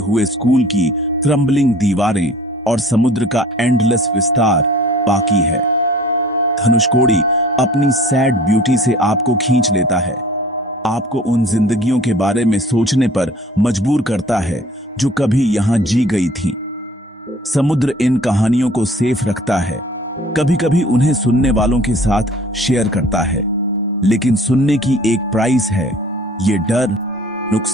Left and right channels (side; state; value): both; normal; correlation 0.49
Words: स्कूल की क्रम्बलिंग दीवारें और समुद्र का एंडलेस विस्तार बाकी है। धनुषकोडी अपनी सैड ब्यूटी से आपको खींच लेता है, आपको उन जिंदगियों के बारे में सोचने पर मजबूर करता है जो कभी यहां जी गई थी। समुद्र इन कहानियों को सेफ रखता है, कभी कभी उन्हें सुनने वालों के साथ शेयर करता है, लेकिन सुनने की एक प्राइस है। ये डर,